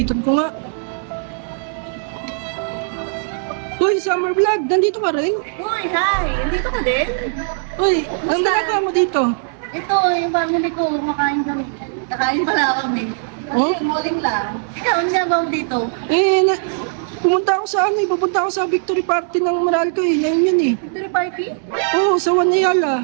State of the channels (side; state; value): left; silent; digital silence